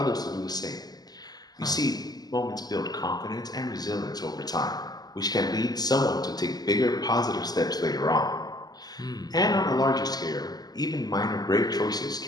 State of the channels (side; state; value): right; late; 0.19 ms